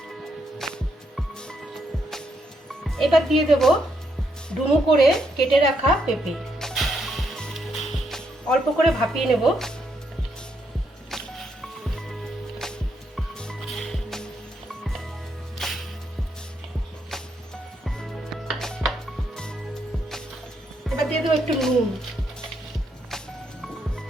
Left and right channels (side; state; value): both; normal; correlation 0.77